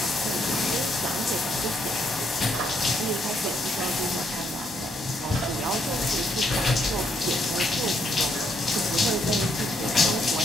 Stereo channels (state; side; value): normal; both; correlation 0.73